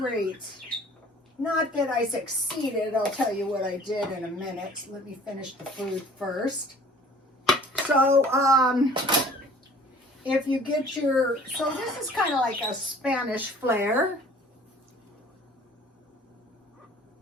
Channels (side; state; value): both; normal; correlation 0.51